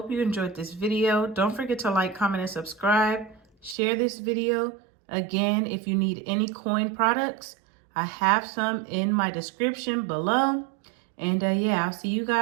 you enjoyed this video. Don't forget to like, comment, and subscribe. Share this video. Again, if you need any coin products, I have some in my description below. And yeah, I'll see you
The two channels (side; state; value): left; drops out; at 3.8 s